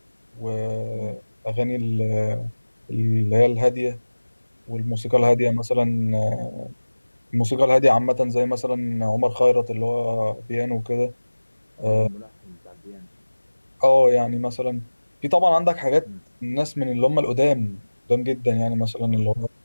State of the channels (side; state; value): both; inverted; correlation -1.00